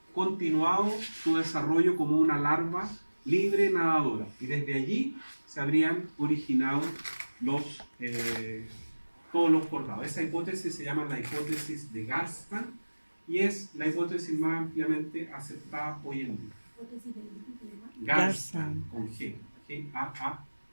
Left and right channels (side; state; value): both; inverted; correlation -1.00